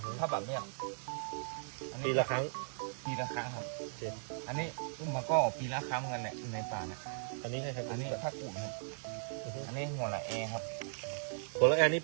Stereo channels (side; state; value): left; silent; digital silence